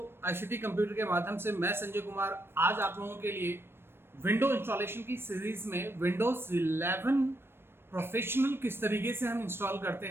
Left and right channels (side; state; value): left; late; 0.11 ms